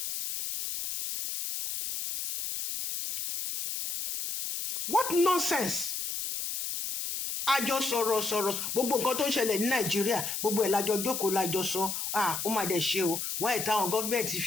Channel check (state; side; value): noise; left; hiss, 4 dB below the sound